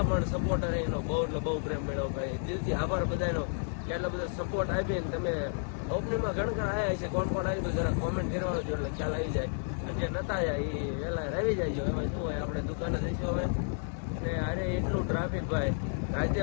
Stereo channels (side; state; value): right; silent; 56 dB below the other